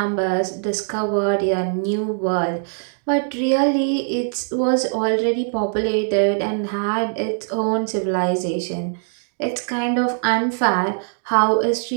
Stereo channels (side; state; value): left; silent; digital silence